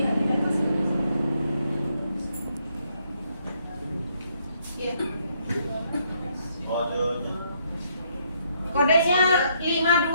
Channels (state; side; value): inverted; both; correlation -0.72